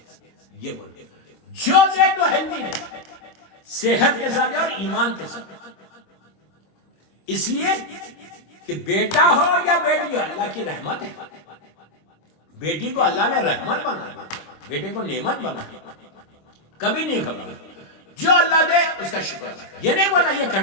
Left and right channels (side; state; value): right; late; 26 ms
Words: یہ بولے جو دے تو ہیلتھی دے، صحت کے ساتھ اور ایمان کے ساتھ. اس لیے کہ بیٹا ہو یا بیٹی ہو اللہ کی رحمت ہے. بیٹی کو اللہ نے رحمت بنایا، بیٹے کو نعمت بنایا. کبھی نہیں گھبرانا، جو اللہ دے اس کا شکر ہے. یہ نہیں بولا یہ